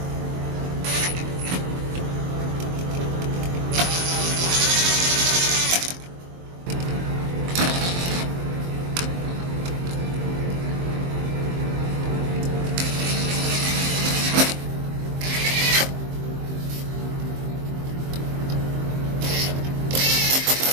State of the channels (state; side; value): late; left; 23 ms